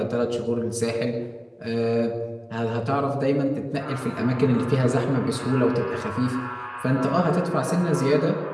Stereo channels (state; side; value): identical; both; correlation 1.00